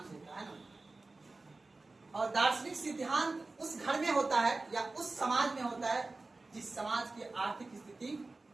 देता है ना। और दार्शनिक सिद्धांत उस घर में होता है या उस समाज में होता है जिस समाज की आर्थिक स्थिति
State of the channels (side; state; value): left; quieter; 3.3 dB